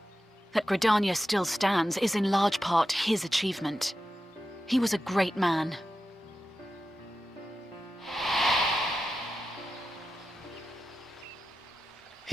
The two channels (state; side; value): normal; both; correlation 0.92